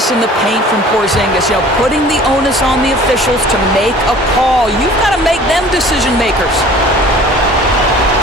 in the paint from Porzingis, putting the onus on the officials to make a call. You've got to make them decision makers.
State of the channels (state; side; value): normal; both; correlation 0.48